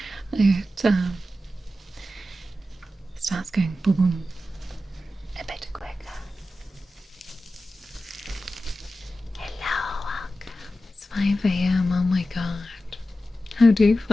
starts going boom boom a bit quicker. Hello, welcome. It's 5 a.m. Oh my god. How do you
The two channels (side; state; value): both; normal; correlation 0.92